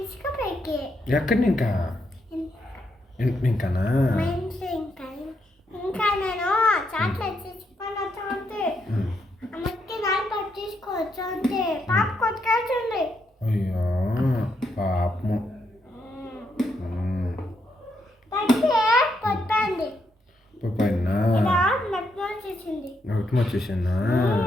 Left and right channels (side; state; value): both; normal; correlation 0.79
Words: ఎక్కడి ఇంకా ఇంకానా ఇంకా నేను చాక్లెట్ తీసుకొని వచ్చి అమ్మకి నాలుగు తీసుకోవచ్చు అంతే పాప కొట్టుకెళ్తుంది. అయ్యో పాపము కొట్టండి పైన నట్టు వచ్చేసింది. నోట్ వచ్చేసిందా?